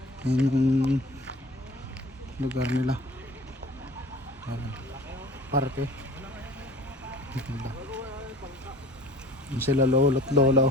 Yan yung lugar nila. Yan. Parke. Yan sila lolo at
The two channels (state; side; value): normal; both; correlation 0.45